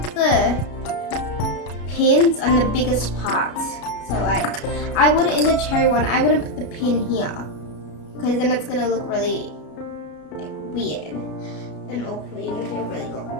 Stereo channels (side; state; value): right; late; 33 ms